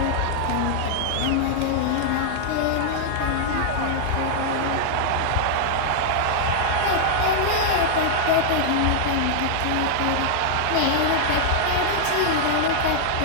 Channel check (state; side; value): different; both; correlation -0.01